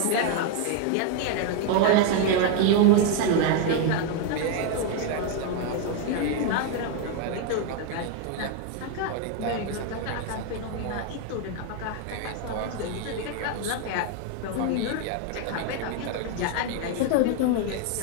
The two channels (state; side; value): different; both; correlation 0.01